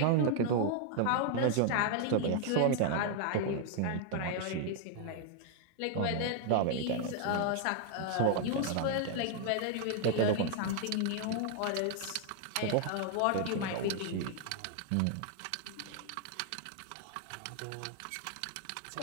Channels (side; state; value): both; different; correlation 0.00